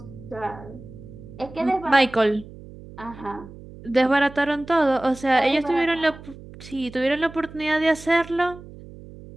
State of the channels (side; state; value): right; noise; hum, 17 dB below the sound